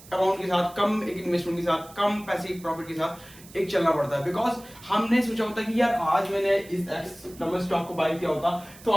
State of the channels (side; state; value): right; noise; hiss, 21 dB below the sound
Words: अमाउंट के साथ, कम एक इन्वेस्टमेंट के साथ, कम पैसे प्रॉफिट के साथ एक चलना पड़ता है। बिकॉज हमने सोचा होता है कि यार आज मैंने इस एक्स नंबर स्टॉक को बाय किया होता तो